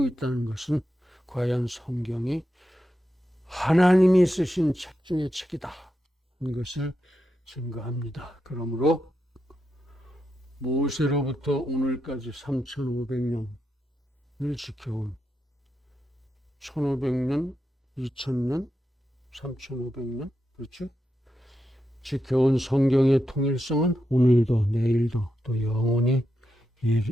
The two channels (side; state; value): both; normal; correlation 0.86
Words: 있다는 것은 과연 성경이 하나님이 쓰신 책 중의 책이다 하는 것을 증거합니다. 그러므로 모세로부터 오늘까지 3500년을 지켜온 1500년, 2000년, 3500년, 그렇죠? 지켜온 성경의 통일성은 오늘도 내일도 또 영원히